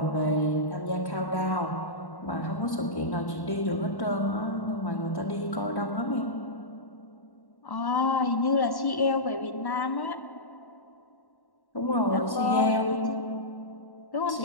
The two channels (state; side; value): late; right; 1.1 ms